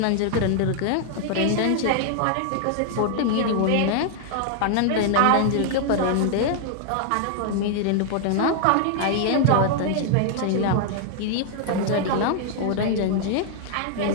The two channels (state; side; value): different; both; correlation 0.00